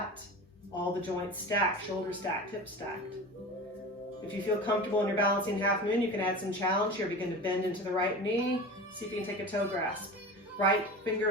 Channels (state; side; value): normal; both; correlation 0.32